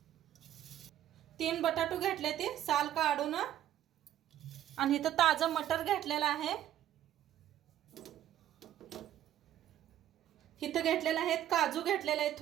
3 बटाटू घेतले ते साल काढून आणि इथं ताजा मटर घेतलेला आहे। इथं घेतलेला आहे काजू घेतलेले आहेत,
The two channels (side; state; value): left; quieter; 11.7 dB